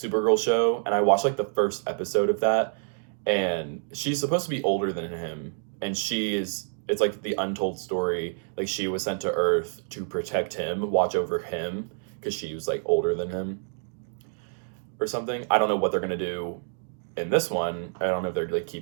show and I watched like the first episode of that, and she's supposed to be older than him, and it's like the untold story, like she was sent to Earth to protect him, watch over him, because she was like older than him or something. I don't know what they're gonna do in this one. I don't know if they're like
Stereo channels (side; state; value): left; silent; 60 dB below the other